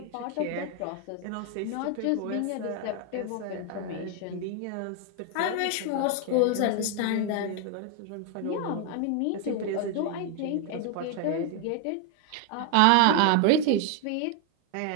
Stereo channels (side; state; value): both; different; correlation 0.01